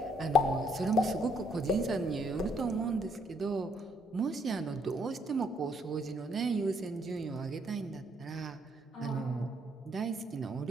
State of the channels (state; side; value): normal; both; correlation 0.70